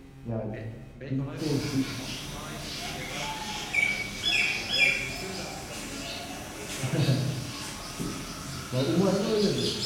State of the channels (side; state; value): both; identical; correlation 1.00